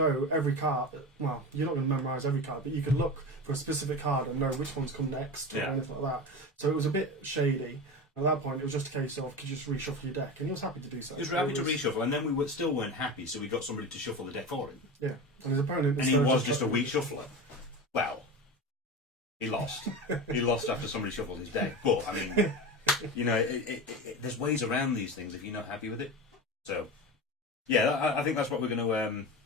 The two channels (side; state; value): both; normal; correlation 0.26